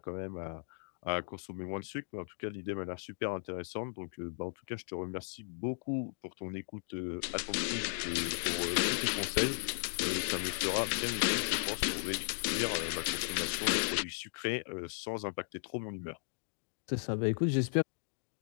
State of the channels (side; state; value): right; silent; digital silence